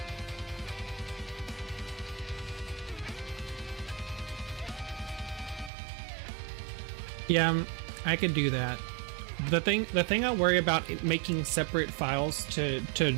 Yeah, I could do that. The thing I worry about making separate files to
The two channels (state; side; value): drops out; left; at 5.7 s